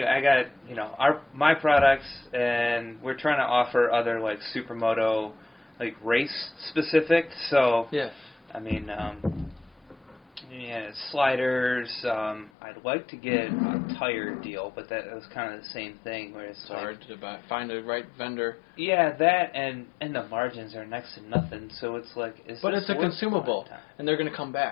I got my products, and we're trying to offer other like Supermoto like race specific. So yeah. I mean, sliders. I'd like to get a tire deal, but that was kind of the same thing. Where it's hard to find the right vendor. Yeah, that and the margins are next to nothing. So it's like, but it's a consumable, and they're going to come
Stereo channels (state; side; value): drops out; right; at 12.5 s